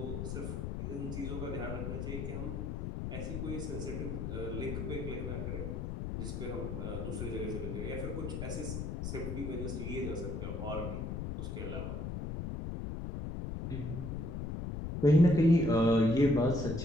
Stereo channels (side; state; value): left; noise; rumble, 4 dB below the sound